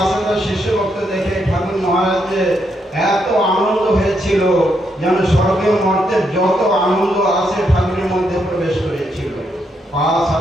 শিষ্য ভক্ত দেখে ঠাকুর মহারাজের এত আনন্দ হয়েছিল, যেন স্বর্গীয় মর্তের যত আনন্দ আছে ঠাকুরের মধ্যে প্রবেশ করেছিল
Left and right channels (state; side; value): normal; both; correlation 0.78